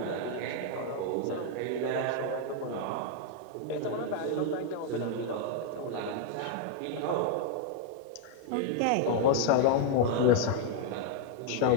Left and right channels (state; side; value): different; both; correlation 0.00